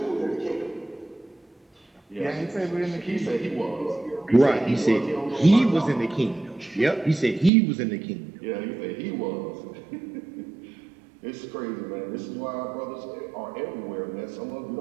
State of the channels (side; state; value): left; drops out; at 7.5 s